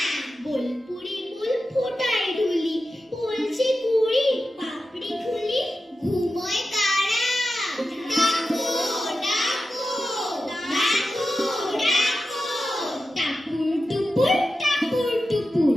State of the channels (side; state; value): both; normal; correlation 0.92